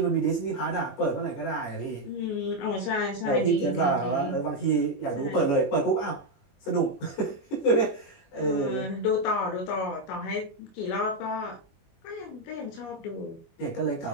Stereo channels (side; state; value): right; late; 21 ms